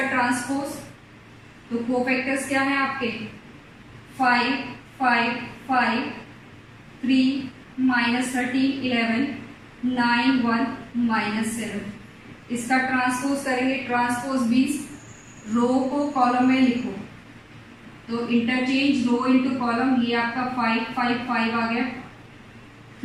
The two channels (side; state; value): both; identical; correlation 1.00